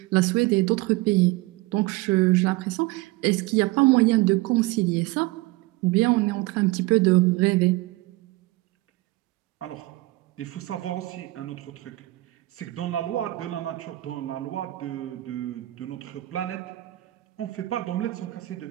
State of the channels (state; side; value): quieter; left; 19.8 dB